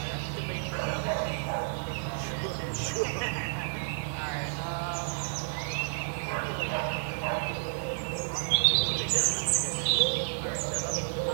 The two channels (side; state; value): left; silent; digital silence